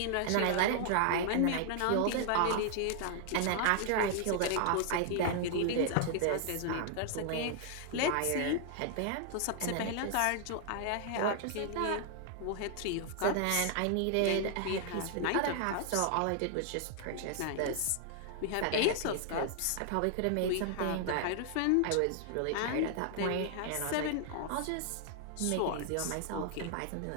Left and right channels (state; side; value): different; both; correlation 0.00